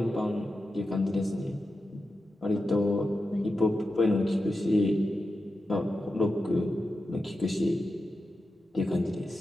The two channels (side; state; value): both; normal; correlation 0.91